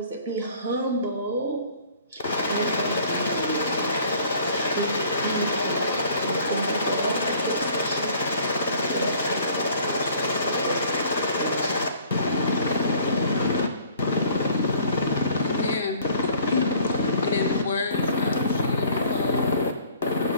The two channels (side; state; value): both; inverted; correlation -0.54